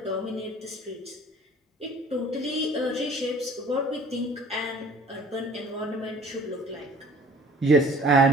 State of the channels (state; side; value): normal; both; correlation 0.50